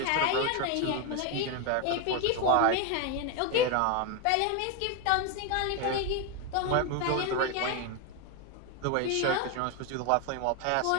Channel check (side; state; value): both; different; correlation 0.01